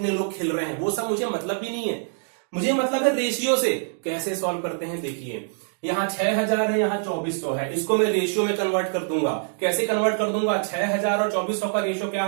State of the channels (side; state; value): left; silent; digital silence